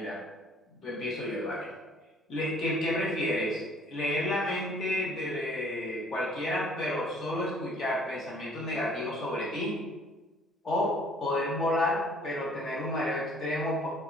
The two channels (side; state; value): both; normal; correlation 0.57